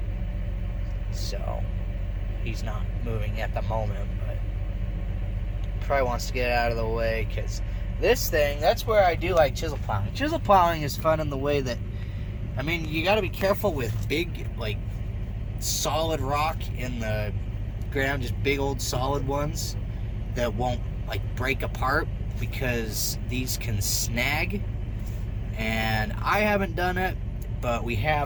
So he's not moving at the moment, but probably wants to get out of the way, because this thing, that's where I do like chisel plowing. Chisel plowing is fun in the way that, I mean, you got to be careful with big, like, solid rock in the ground, just big old solid ones that won't, like, break apart, because these can snag. And I haven't done it, but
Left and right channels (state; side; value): identical; both; correlation 1.00